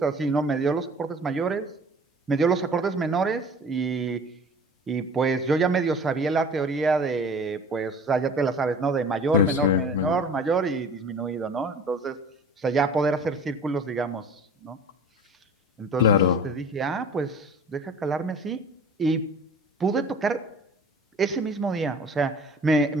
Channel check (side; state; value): both; normal; correlation 0.43